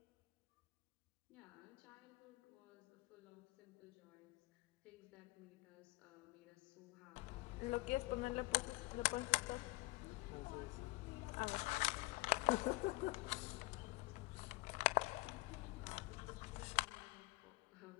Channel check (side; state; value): right; quieter; 22.7 dB